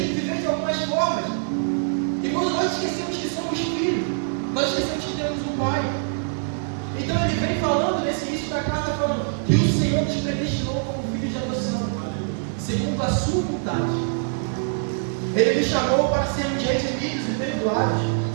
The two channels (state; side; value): silent; left; digital silence